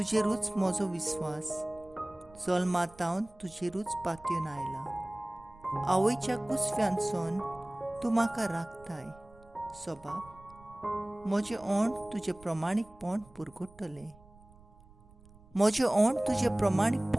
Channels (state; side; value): noise; right; rumble, 25 dB below the sound